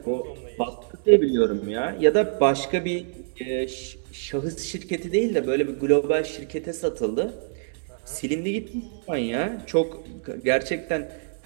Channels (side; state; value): left; silent; digital silence